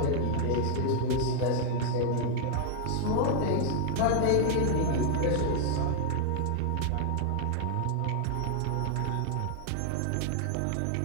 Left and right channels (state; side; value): different; both; correlation 0.00